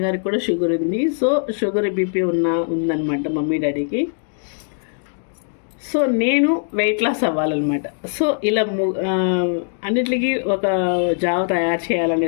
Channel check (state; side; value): silent; right; digital silence